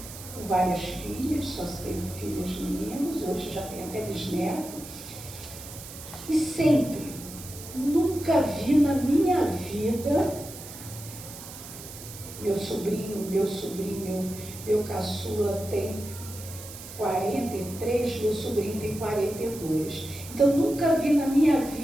Com várias filhas, só teve filhos meninos, hoje já tem até bisneto. E sempre, nunca vi na minha vida meu caçula tem 43, meu sobrinho tem 42. Então, nunca vi na minha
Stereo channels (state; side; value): noise; right; hiss, 13 dB below the sound